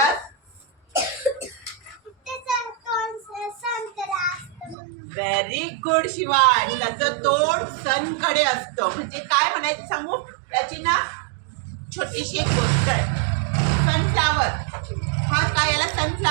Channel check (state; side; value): drops out; left; at 4.8 s